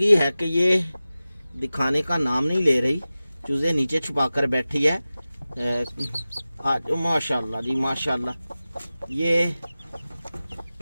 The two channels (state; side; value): inverted; both; correlation -0.96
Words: है कि ये दिखाने का नाम नहीं ले रही। चूज़े नीचे छुपा कर बैठी है। आज माशाल्लाह जी माशाल्लाह ये